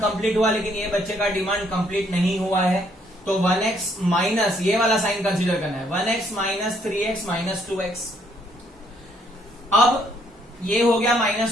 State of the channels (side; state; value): both; normal; correlation 0.68